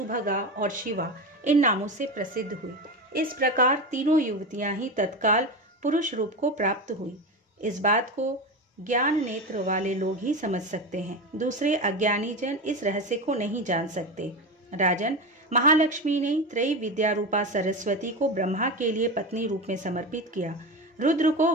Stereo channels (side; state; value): both; normal; correlation 0.22